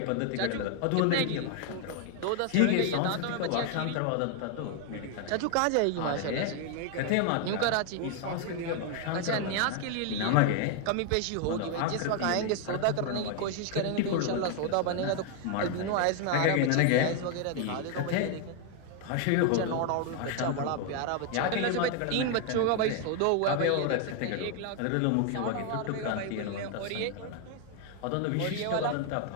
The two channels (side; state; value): both; different; correlation 0.01